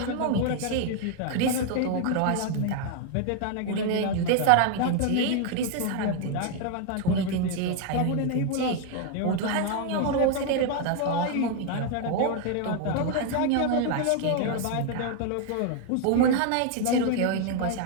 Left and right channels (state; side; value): different; both; correlation 0.00